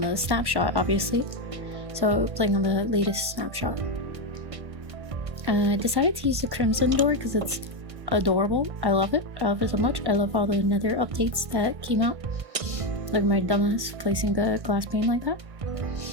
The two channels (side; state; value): left; late; 1.1 ms